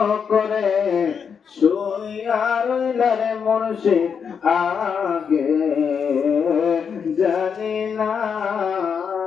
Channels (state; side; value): quieter; right; 6.7 dB